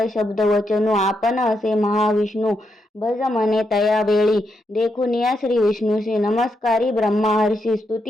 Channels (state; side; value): normal; both; correlation 0.82